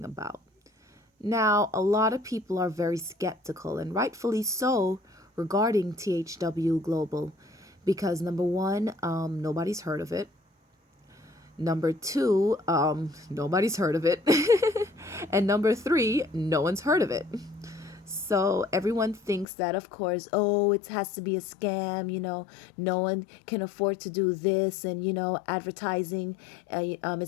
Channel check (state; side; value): drops out; right; at 19.5 s